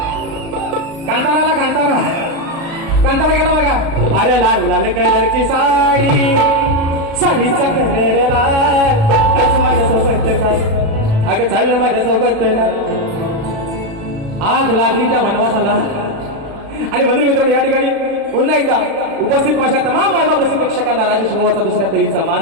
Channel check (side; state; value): left; late; 36 ms